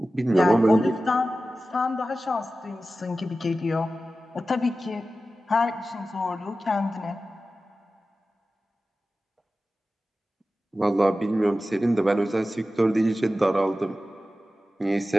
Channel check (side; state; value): both; normal; correlation 0.94